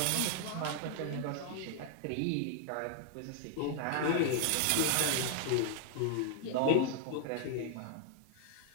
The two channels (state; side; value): different; both; correlation 0.00